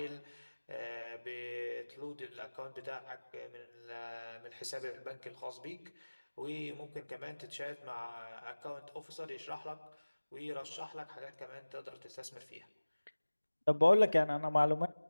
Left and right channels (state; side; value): inverted; both; correlation -1.00